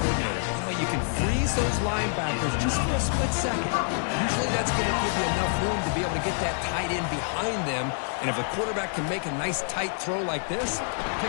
You know, you can freeze those linebackers just for a split second. Usually that's going to give you enough room to be able to get that tight end behind them. And if a quarterback can make a nice tight throw like this,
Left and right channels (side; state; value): right; silent; 60 dB below the other